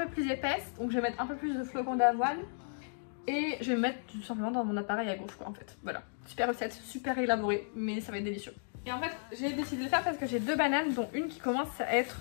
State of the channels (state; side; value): silent; right; digital silence